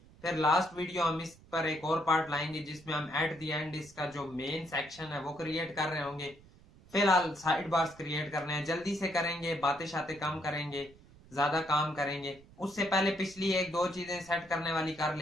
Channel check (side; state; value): right; noise; rumble, 24 dB below the sound